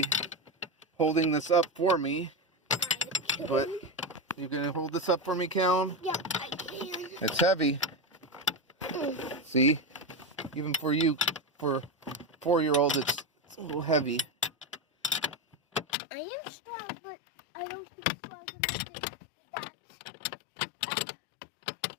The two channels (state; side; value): drops out; right; at 15.9 s